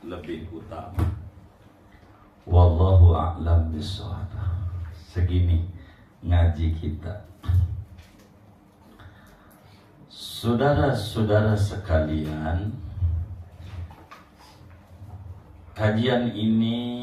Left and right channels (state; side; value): identical; both; correlation 1.00